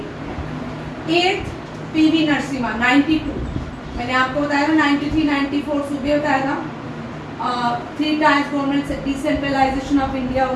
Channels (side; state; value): both; identical; correlation 1.00